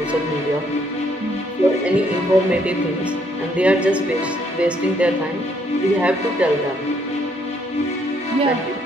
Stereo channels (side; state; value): both; normal; correlation 0.69